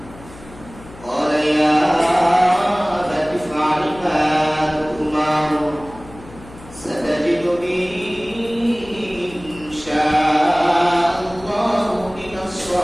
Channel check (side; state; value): left; noise; hum, 19 dB below the sound